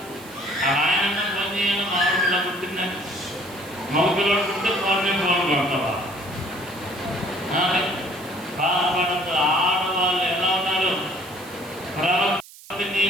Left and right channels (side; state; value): right; noise; hiss, 20 dB below the sound